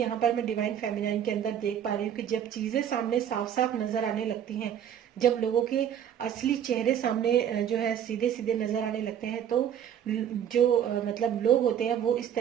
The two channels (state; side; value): quieter; left; 9.4 dB